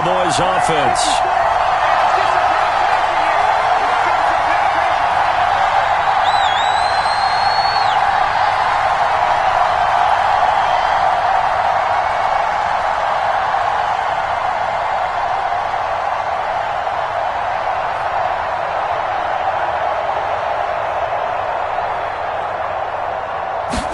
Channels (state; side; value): identical; both; correlation 1.00